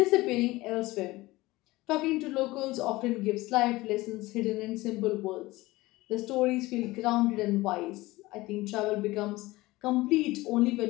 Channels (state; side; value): quieter; right; 19.7 dB